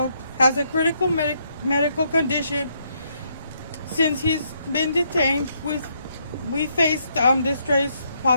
has a critical medical condition. Since he's been detained, we faced distress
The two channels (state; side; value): inverted; both; correlation -0.74